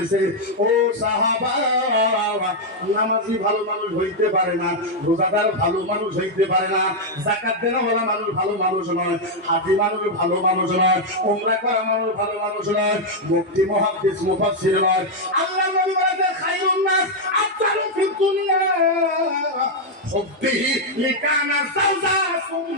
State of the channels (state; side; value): normal; both; correlation 0.00